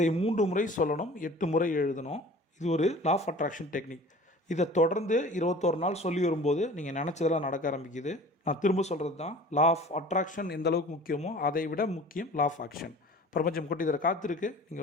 3 முறை சொல்லணும், 8 முறை எழுதணும். இது ஒரு லா ஆஃப் அட்ராக்ஷன் டெக்னிக். இதை தொடர்ந்து 21 நாள் சொல்லி வரும்போது நீங்கள் நினச்சதெல்லாம் நடக்க ஆரம்பிக்குது. நான் திரும்ப சொல்கிறது தான், லா ஆஃப் அட்ராக்ஷன் எந்த அளவுக்கு முக்கியமோ அதை விட முக்கியம் லா ஆஃப் ஆக்ஷன். பிரபஞ்சம் கொட்டி தர காத்திருக்கு. நீங்கள்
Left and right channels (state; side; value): normal; both; correlation 0.44